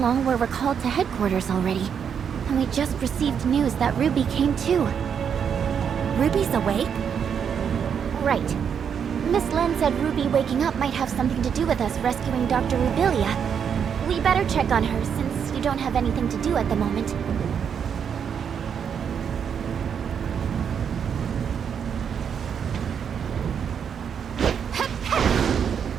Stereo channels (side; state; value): left; quieter; 7.5 dB